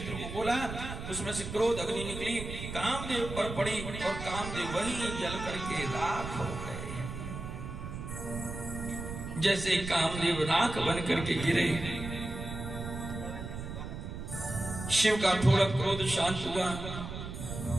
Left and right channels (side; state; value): right; noise; rumble, 8 dB below the sound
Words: को बोला, उसमें से क्रोध अग्नि निकली, कामदेव पर पड़ी और कामदेव वहीं जल करके राख हो गए। जैसे कामदेव राख बन करके गिरे, शिव का थोड़ा क्रोध शांत हुआ।